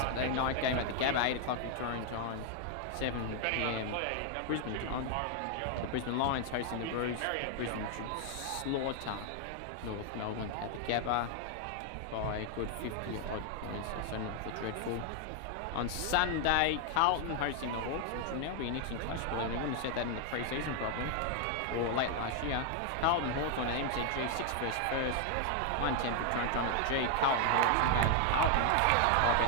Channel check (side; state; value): both; different; correlation 0.00